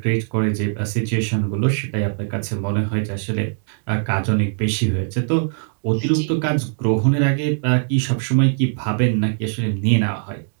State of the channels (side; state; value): left; silent; digital silence